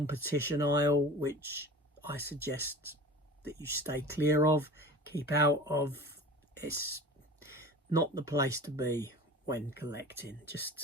aisle, which I suggest that you stay clear of, keep out of. It's not the place to be when collecting.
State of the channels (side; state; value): both; normal; correlation 0.37